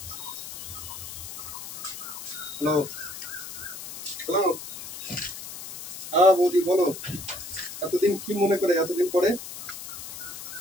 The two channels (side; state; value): left; noise; hiss, 10 dB below the sound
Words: হ্যালো হ্যালো, হ্যাঁ বৌদি বলো। এতদিন কি মনে করে, এতদিন পরে